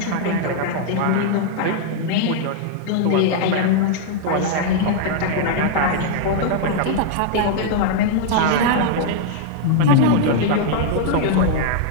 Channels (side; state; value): both; different; correlation 0.00